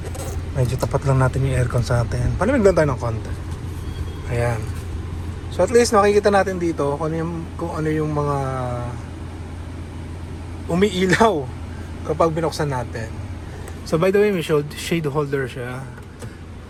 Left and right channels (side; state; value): both; identical; correlation 1.00